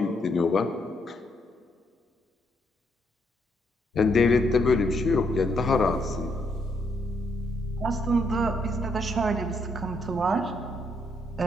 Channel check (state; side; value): normal; both; correlation 0.75